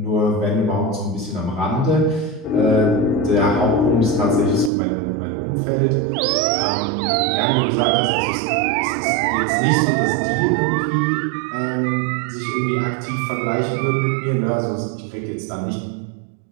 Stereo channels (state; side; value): drops out; left; at 4.7 s